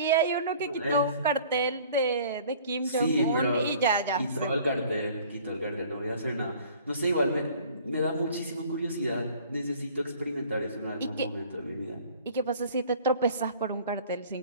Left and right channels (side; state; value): both; inverted; correlation -0.50